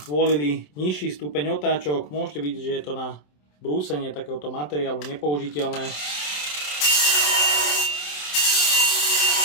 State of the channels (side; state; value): right; late; 27 ms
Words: zvolili nižší stupeň otáčok, môžete vidieť, že je to na brúsenie takéhoto materiálu nepoužiteľné.